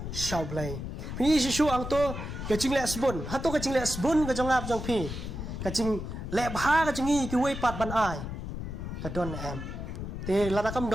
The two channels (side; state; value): left; noise; rumble, 6 dB below the sound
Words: shau blai pi si shu ang to ka cing le sbun hato ka cing le sbun ka jong ap jong pi ka cing le bha ka cing ki wei pat ban ai ka don em te lada kam